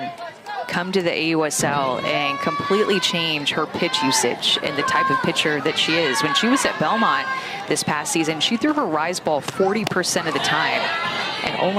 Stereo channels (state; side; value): identical; both; correlation 1.00